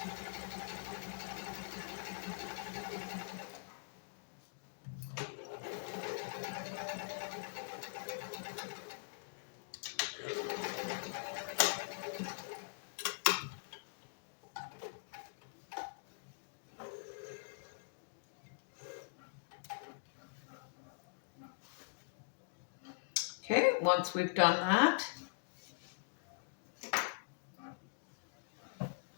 Okay, once we've done that,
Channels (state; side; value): silent; right; digital silence